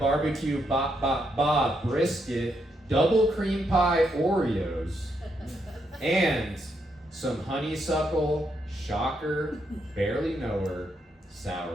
Bob brisket, double cream pie Oreos, and some honeysuckle, shocker, barely knower,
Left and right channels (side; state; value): both; normal; correlation 0.78